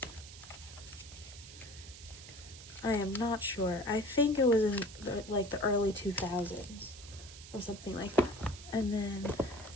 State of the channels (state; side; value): noise; right; hiss, 15 dB below the sound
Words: I am not sure. I think it was in like the early 2000s or something like that. And then,